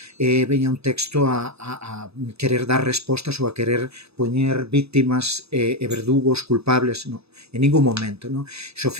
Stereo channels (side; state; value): left; late; 0.79 ms